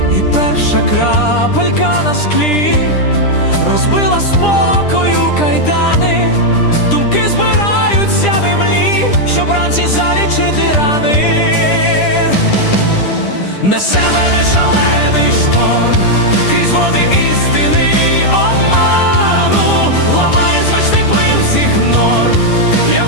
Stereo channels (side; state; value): right; late; 10 ms